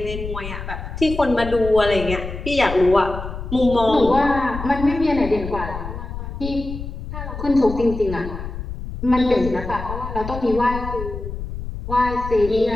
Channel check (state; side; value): noise; left; rumble, 8 dB below the sound